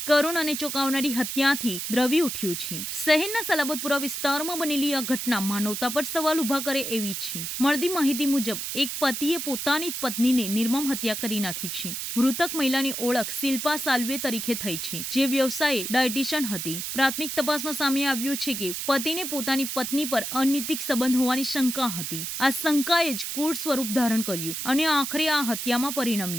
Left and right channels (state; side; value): noise; right; hiss, 4 dB below the sound